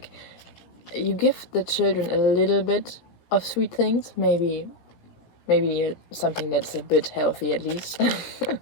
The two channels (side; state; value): right; late; 17 ms